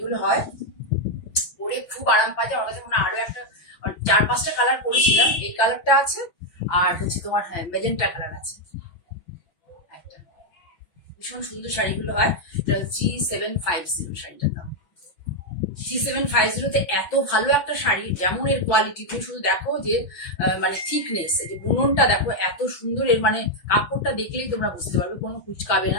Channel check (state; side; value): late; right; 5.9 ms